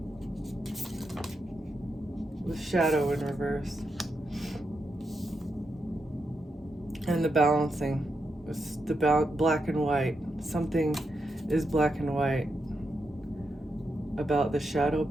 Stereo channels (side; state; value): both; normal; correlation 0.85